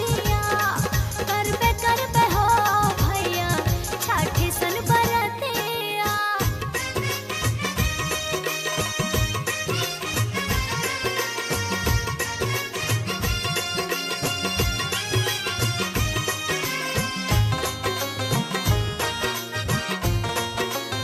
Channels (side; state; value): both; identical; correlation 1.00